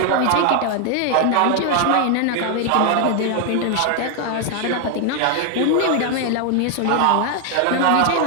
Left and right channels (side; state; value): both; different; correlation 0.00